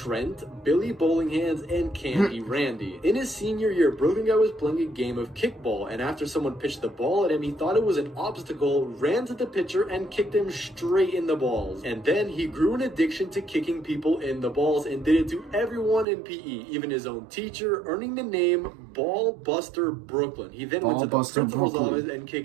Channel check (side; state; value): left; drops out; at 16.1 s